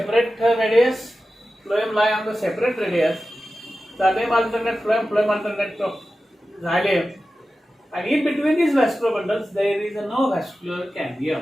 radius. Phloem lie on the separate radius. Xylem alternate phloem, phloem alternate xylem. And in between these vascular bundles, there is no vascular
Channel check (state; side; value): normal; both; correlation 0.94